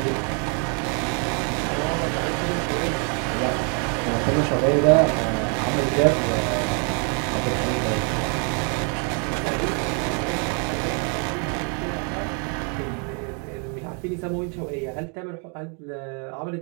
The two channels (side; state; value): left; quieter; 38.1 dB